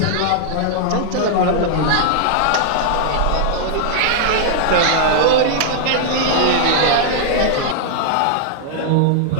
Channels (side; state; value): both; different; correlation -0.01